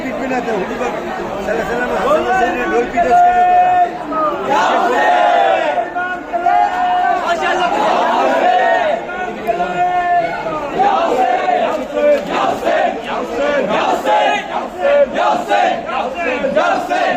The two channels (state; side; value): identical; both; correlation 1.00